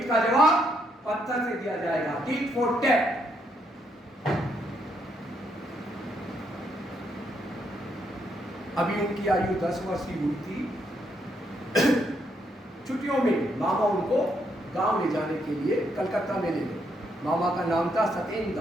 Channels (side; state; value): both; normal; correlation 0.75